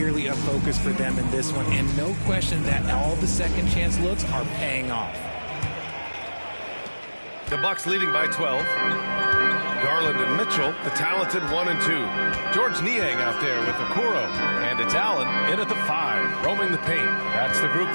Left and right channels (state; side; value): inverted; both; correlation -1.00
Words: a focus for them in this one, and no question that all the second chance looks are paying off. The Bucks leading by 12. Garland and Mitchell, the talented 1 and 2. George Niang out there with Okoro. And it's Allen in at the 5, roaming the paint. That's the group